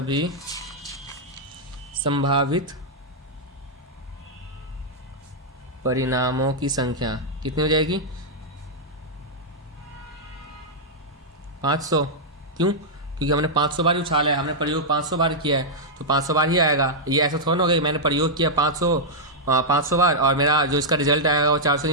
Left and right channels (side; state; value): both; normal; correlation -0.06